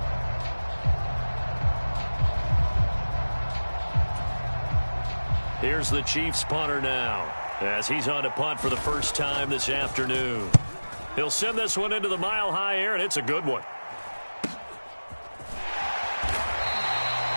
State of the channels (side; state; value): both; inverted; correlation -1.00